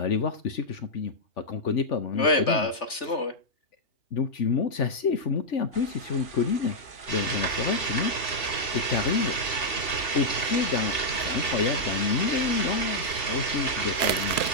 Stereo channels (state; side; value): late; right; 2.4 ms